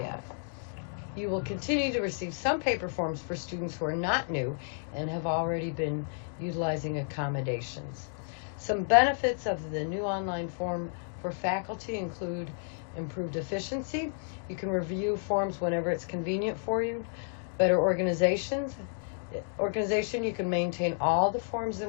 You will continue to receive some paper forms for students who are not new and have already been utilizing accommodations. Some benefits of the new online form for faculty include improved efficiency. You can review forms whenever it's convenient for you. Better organization, you can maintain all the forms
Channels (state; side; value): silent; right; digital silence